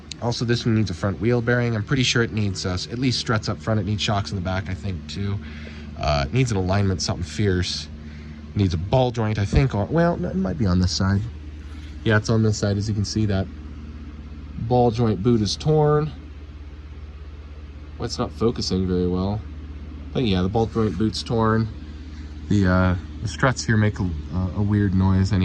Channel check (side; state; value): both; identical; correlation 1.00